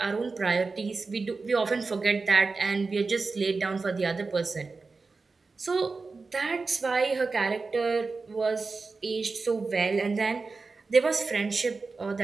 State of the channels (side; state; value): left; quieter; 4.1 dB